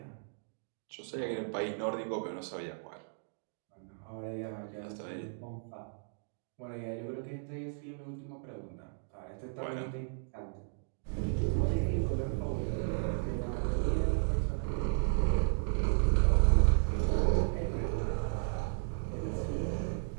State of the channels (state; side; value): silent; left; digital silence